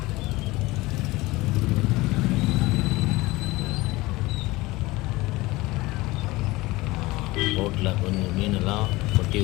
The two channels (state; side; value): quieter; right; 20.7 dB